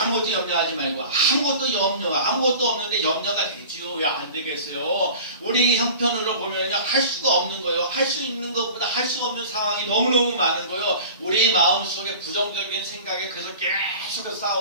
염려하지 말고 아무것도 없는데 염려가 되지요. 왜 안 되겠어요? 우리 형편으로 보면요 할 수가 없는 거예요. 할 수 있는 것보다 할 수 없는 상황이 너무너무 많은 거예요. 우리 마음속에 부정적인 생각에 그래서 계속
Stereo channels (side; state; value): both; inverted; correlation -0.40